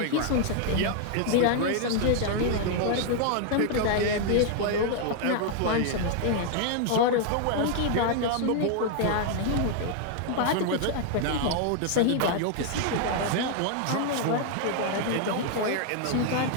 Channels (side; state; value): both; different; correlation 0.00